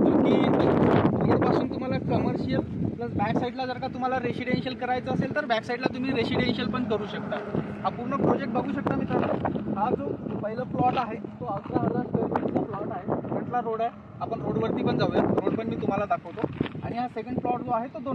की रोडपासून तुम्हाला कमर्शियल प्लस बॅक साईडला जर का तुम्हाला रेसिडेन्शियल करायचं असेल तर बॅक साईडला तुम्ही रेसिडेन्शियल पण करू शकता। हा पूर्ण प्रोजेक्ट बघू शकता मित्रांनो। हा जो पहिला प्लॉट आहे तो 11,000 स्क्वेअर फीटचा प्लॉट आहे। फ्रंटला रोड आहे, आपण रोडवरती पण जाऊया, रोड पण मी तुम्हाला दाखवतो। आणि हा सेकंड प्लॉट जो आहे तो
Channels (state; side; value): identical; both; correlation 1.00